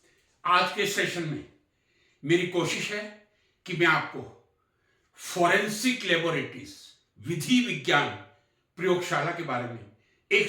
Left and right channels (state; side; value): identical; both; correlation 1.00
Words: आज के सेशन में मेरी कोशिश है कि मैं आपको फॉरेंसिक लेबोरेटरीज विधि विज्ञान प्रयोगशाला के बारे में एक